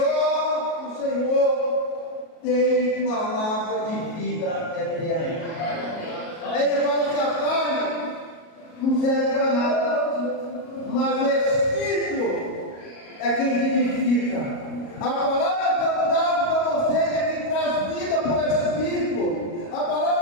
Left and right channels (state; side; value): late; right; 37 ms